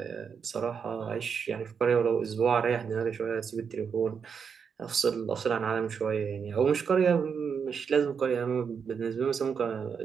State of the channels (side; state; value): left; quieter; 6.5 dB